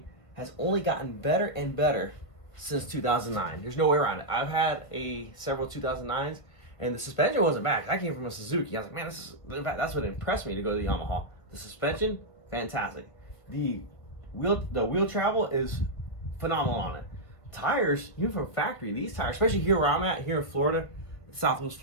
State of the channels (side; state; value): right; late; 1.7 ms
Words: has only gotten better and better since 2009. There's no way around it. I've had several 2009s, and the suspension wasn't bad. I came from a Suzuki. I was like, man, that's what impressed me to go to the Yamaha. The suspension, fantastic. The wheel travel is phenomenal on it. Tires, even from factory, these tires, especially here where I'm at, here in Florida, Southwest